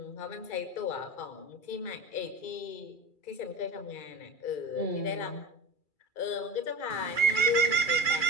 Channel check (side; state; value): right; late; 2.3 ms